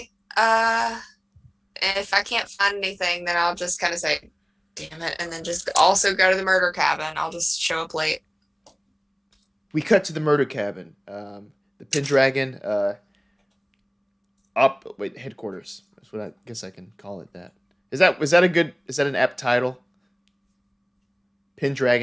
If I can't find anything, then I'll just kind of say, damn it, and then just also go to the murder cabin. I'll just show up late. We cut to the murder cabin. The Pendragon headquarters. That's what I guess I can call it that. Is that an apt title?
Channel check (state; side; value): identical; both; correlation 1.00